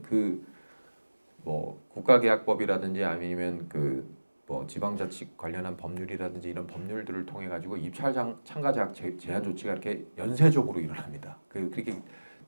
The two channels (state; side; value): inverted; both; correlation -1.00